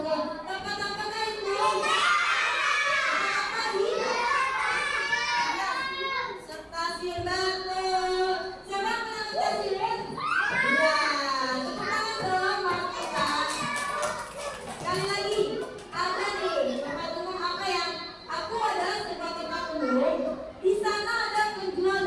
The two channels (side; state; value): both; identical; correlation 1.00